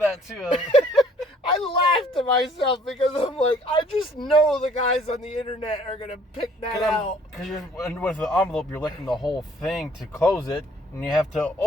too. I laughed to myself because I'm like, I just know the guys on the internet are going to pick that out. Because with the envelope, you're licking the whole thing to close it, and you have to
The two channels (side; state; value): both; normal; correlation 0.58